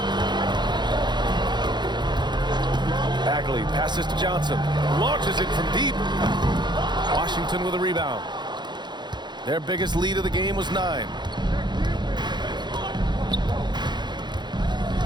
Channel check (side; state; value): left; late; 0.21 ms